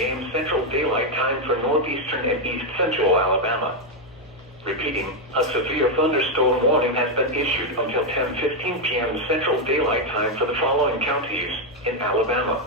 Central Daylight Time for northeastern and east central Alabama. Repeating, a severe thunderstorm warning has been issued until 10:15 p.m. Central Daylight Time for the following counties in Alabama:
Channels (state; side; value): normal; both; correlation 0.03